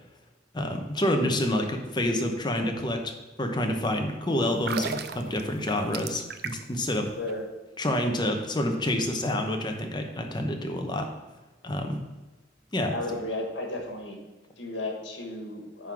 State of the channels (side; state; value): both; normal; correlation 0.52